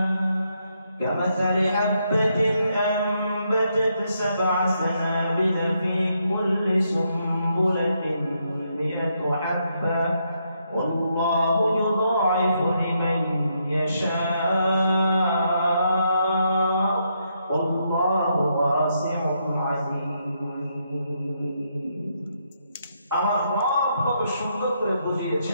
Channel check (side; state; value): both; inverted; correlation -0.78